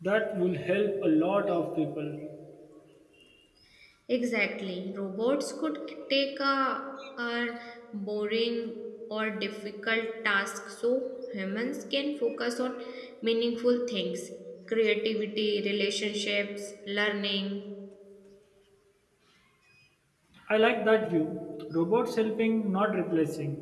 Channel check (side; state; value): both; identical; correlation 1.00